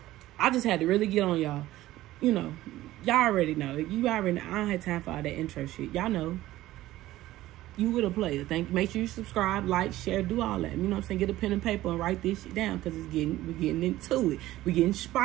I just had to really get on y'all. You know, y'all already know. You already know. I don't have time for all that intro shit. Y'all know. You with a player. Make sure you subscribe, like, share, do all that. You know what I'm saying? Get a pen and paper and write this shit down because we're getting into it. We're getting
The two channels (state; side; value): quieter; left; 15.7 dB